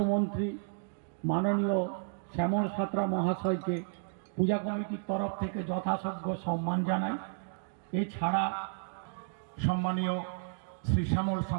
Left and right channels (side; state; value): left; silent; digital silence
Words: মাননীয় শ্যামল সাঁতরা মহাশয়কে পূজা কমিটির তরফ থেকে যথাযোগ্য সম্মান জানাই। এছাড়া সম্মানীয় শ্রী শ্যামল